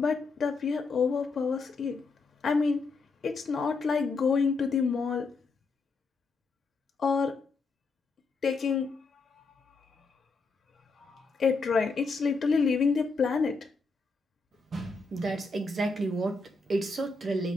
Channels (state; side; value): quieter; right; 3.9 dB